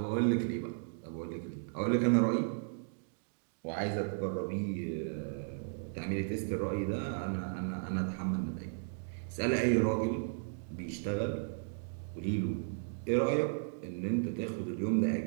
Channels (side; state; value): left; silent; digital silence